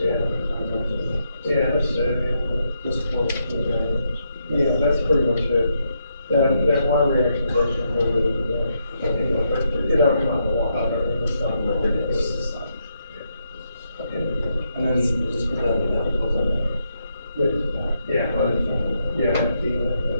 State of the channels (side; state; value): both; inverted; correlation -0.80